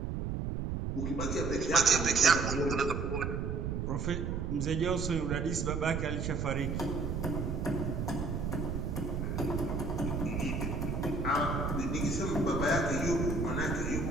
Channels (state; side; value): noise; right; rumble, 2 dB below the sound